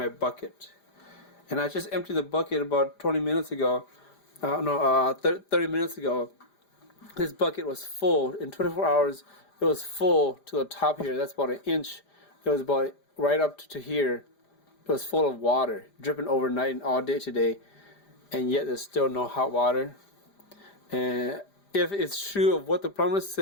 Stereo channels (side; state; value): right; late; 5.0 ms